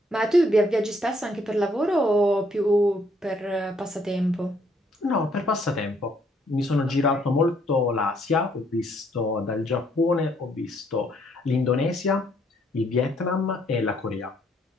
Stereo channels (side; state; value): both; normal; correlation 0.68